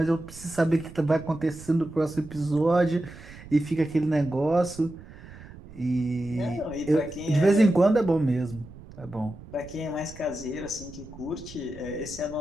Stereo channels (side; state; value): right; noise; rumble, 17 dB below the sound